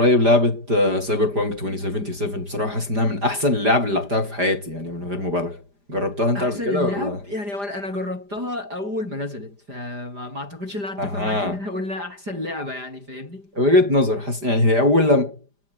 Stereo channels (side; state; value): left; late; 5.0 ms